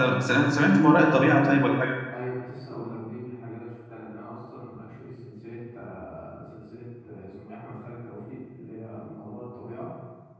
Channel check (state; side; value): identical; both; correlation 1.00